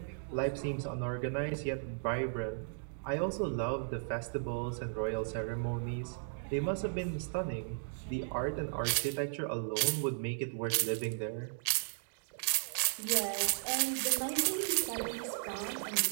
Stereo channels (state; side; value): silent; left; digital silence